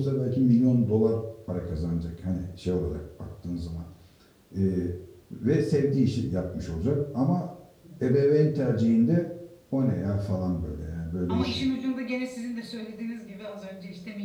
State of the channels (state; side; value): identical; both; correlation 1.00